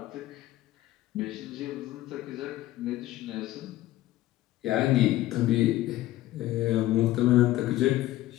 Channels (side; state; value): right; quieter; 15.7 dB